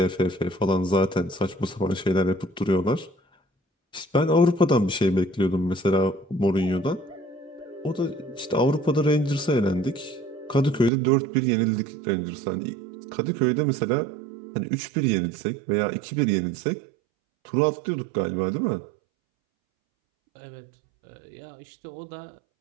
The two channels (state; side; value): drops out; left; at 10.9 s